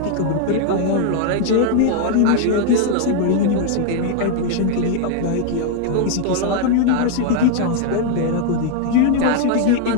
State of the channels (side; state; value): both; different; correlation 0.00